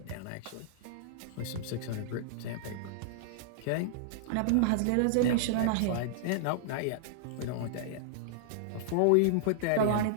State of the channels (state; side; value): different; both; correlation -0.01